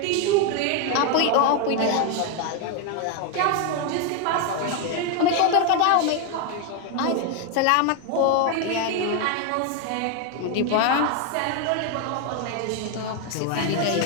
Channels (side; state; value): both; different; correlation 0.01